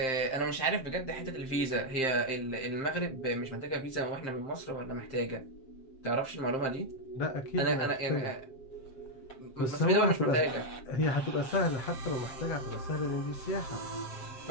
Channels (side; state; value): right; late; 7.6 ms